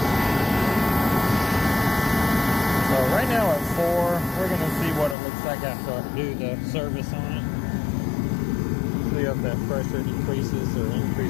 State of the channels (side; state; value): right; drops out; at 5.2 s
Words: So right now at 4, we're going to see what it looks like after I do the service on it. See if that pressure decreases or